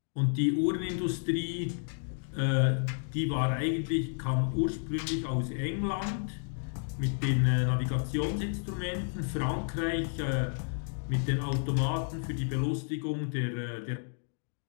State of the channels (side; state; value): right; silent; 57 dB below the other